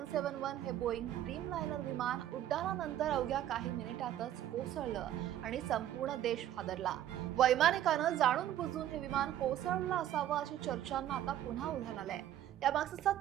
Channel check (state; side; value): quieter; left; 11.9 dB